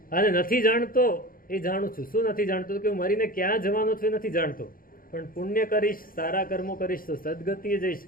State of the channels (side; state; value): right; late; 0.41 ms